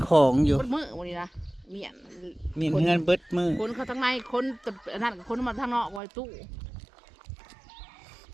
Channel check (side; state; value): left; drops out; at 6.0 s